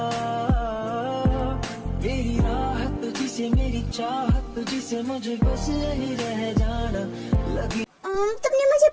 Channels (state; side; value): identical; both; correlation 1.00